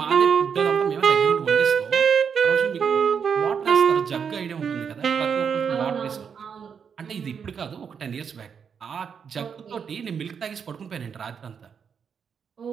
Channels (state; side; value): quieter; left; 6.8 dB